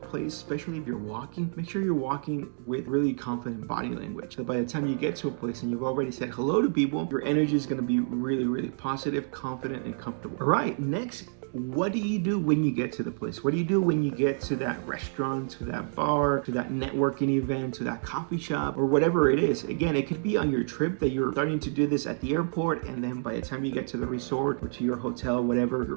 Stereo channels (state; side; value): silent; left; digital silence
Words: especially if you're walking. Make sure you're walking with really confident body language. So by the time you get to a place and you've already said hello to people, your energy is going to be really, really positive, confident, and comfortable. All right, next, what do you do when you get to the place? What do you do when you get to that restaurant, to that bar, to that networking event, to that coffee shop, or whatever it is? Again, it could be on your trip that you're starting to do this at the airport, and then by the time you get to the resort or to your hotel, whatever,